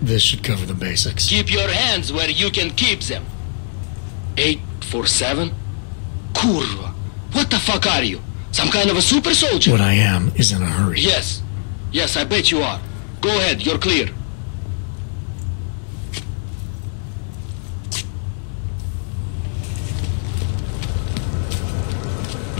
This should cover the basics. Keep your hands where you can keep them. 847? Kurva. What the fuck are you? Some kind of a super soldier? What I am is in a hurry. Yes. Yes, I bet you are. Go ahead, you're clear.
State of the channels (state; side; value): silent; right; digital silence